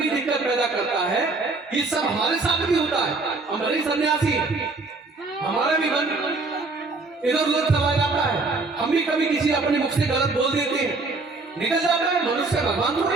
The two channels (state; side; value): quieter; left; 3.6 dB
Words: दिक्कत पैदा करता है। ये सब हमारे साथ भी होता है। हम भले सन्यासी, हमारा भी मन इधर उधर चला जाता है। हम भी कभी किसी अपने मुख से गलत बोल देते हैं, निकल जाता है। मनुष्य भगवान तो